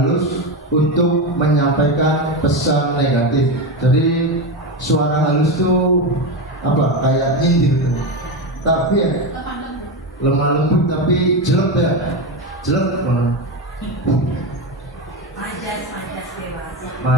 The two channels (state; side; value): normal; both; correlation 0.15